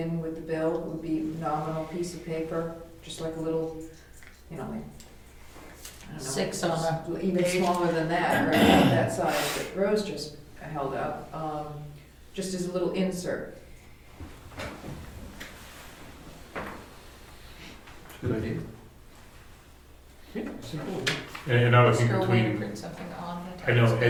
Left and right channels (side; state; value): both; identical; correlation 1.00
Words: with the bill, it would be a nominal piece of paper, just like a little, like, I don't know. 6 on a Even page. smaller than that, right, about that size that Rose just held up, just as a little insert. Good idea. And another Is thing there a way to between, print something on the I know tax